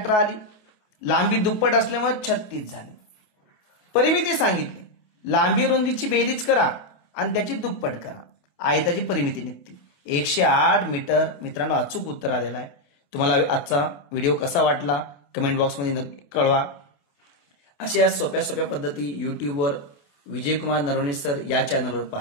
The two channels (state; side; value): late; right; 28 ms